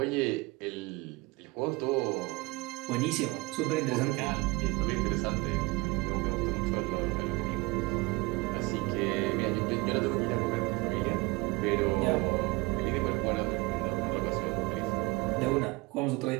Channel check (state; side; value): quieter; left; 23.6 dB